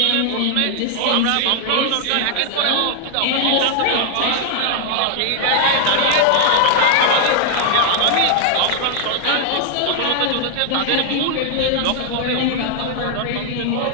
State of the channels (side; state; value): both; different; correlation 0.00